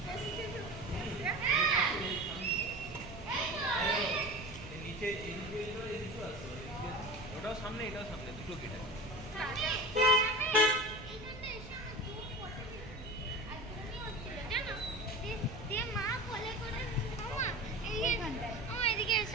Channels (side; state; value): right; noise; rumble, 13 dB below the sound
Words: নিচে ওটাও সামনে এটাও সামনে দুটো গেট আছে মা কোলে করে মামা এদিকে